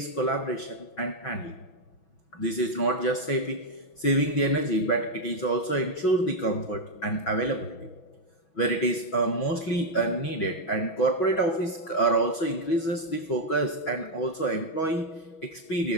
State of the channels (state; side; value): late; right; 6.1 ms